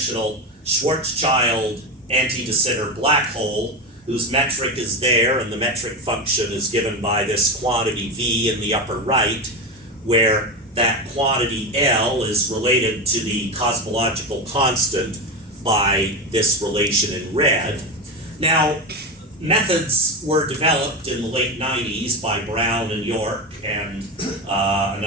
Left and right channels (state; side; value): normal; both; correlation 0.18